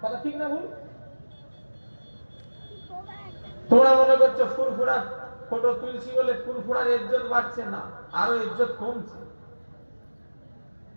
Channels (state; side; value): inverted; both; correlation -1.00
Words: কথা ঠিক না ভুল? তোমরা মনে করছো ফুরফুরা ফটো তুলছি বলে ফুরফুরার ইজ্জত বাড়ছে? না, আরো ইজ্জত কমছে।